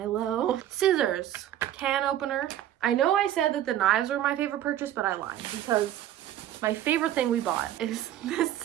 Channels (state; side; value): quieter; left; 12.1 dB